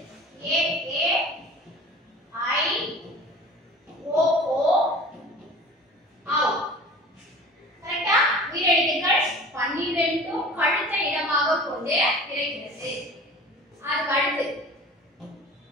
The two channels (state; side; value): normal; both; correlation 0.41